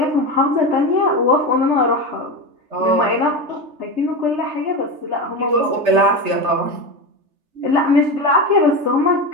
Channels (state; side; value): late; left; 3.3 ms